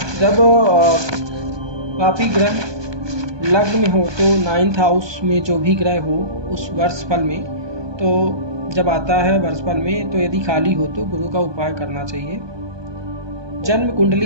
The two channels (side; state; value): left; late; 1.2 ms